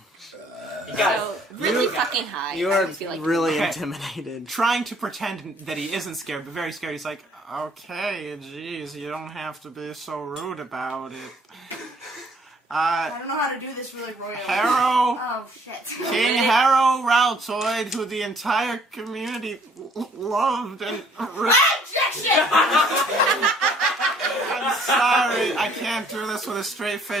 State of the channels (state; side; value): normal; both; correlation 0.61